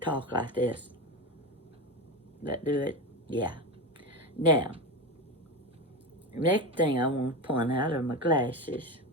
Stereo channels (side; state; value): both; normal; correlation 0.19